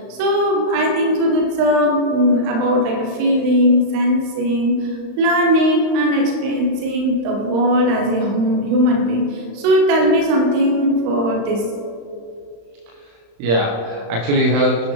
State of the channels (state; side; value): late; left; 35 ms